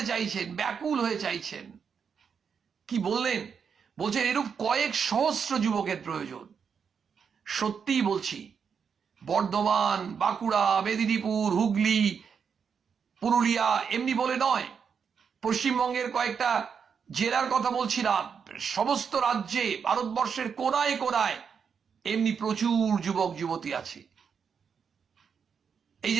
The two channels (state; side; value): quieter; left; 6.6 dB